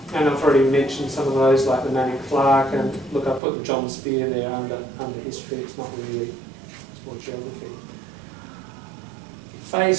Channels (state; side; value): drops out; left; at 3.4 s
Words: And I've already mentioned some of those, like the Manning Clark, and look, I put the John Spear there under history. It's not really, it's more geography.